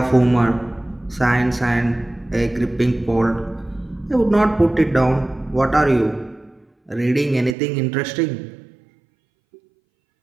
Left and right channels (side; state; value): left; drops out; at 7.6 s